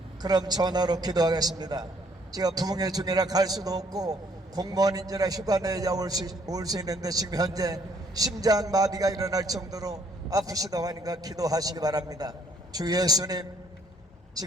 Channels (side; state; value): both; normal; correlation 0.65